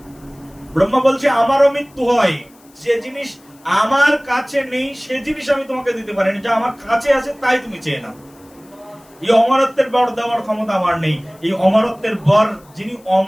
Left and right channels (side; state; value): left; noise; hiss, 29 dB below the sound